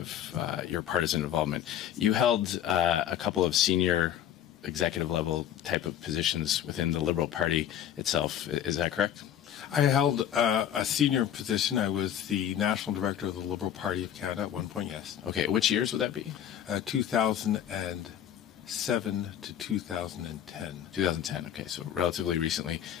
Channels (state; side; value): quieter; right; 10.3 dB